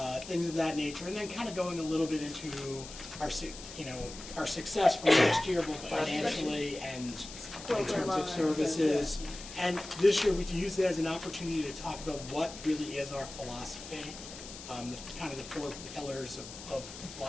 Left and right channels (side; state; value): left; noise; hiss, 13 dB below the sound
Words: Things of that nature, and then kind of going a little bit into our success from last year, both financially and in terms of services. And this year, we use it as an opportunity to talk about what really is our philosophy, kind of the 4 pillars of